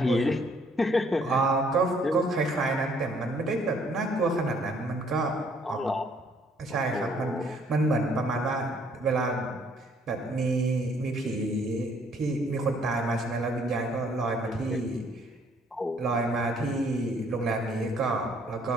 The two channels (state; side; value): normal; both; correlation 0.63